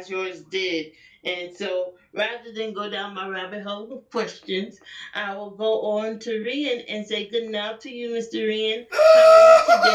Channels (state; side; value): identical; both; correlation 1.00